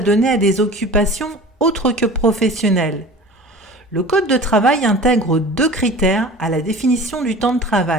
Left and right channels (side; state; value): both; normal; correlation 0.39